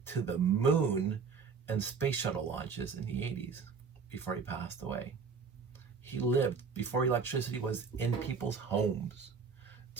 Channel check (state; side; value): quieter; left; 5.5 dB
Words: to the moon and space shuttle launches in the 80s before he passed away. He lived before electricity was in people's homes,